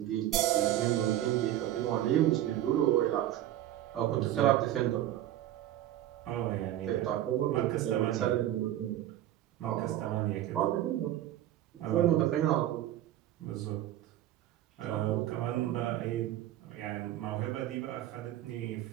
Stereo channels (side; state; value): left; quieter; 13.0 dB